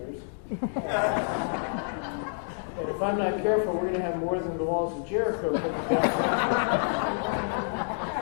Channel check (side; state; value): right; silent; digital silence